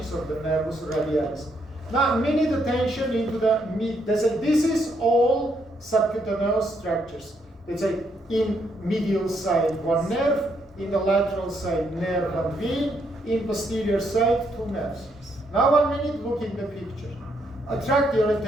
of the nervus radialis. Now, minute attention into the mid. This is all subcutaneous structures. Let's say in medial side, 1 nerve, in the lateral side, nerve and vein, in posterior side, 2 nerves. Now 1 minute, look in the picture. Attract your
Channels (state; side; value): normal; both; correlation 0.74